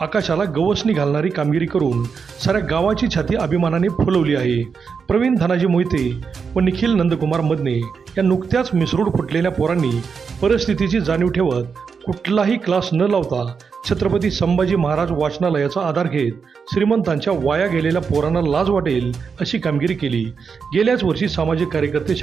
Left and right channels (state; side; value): quieter; left; 5.8 dB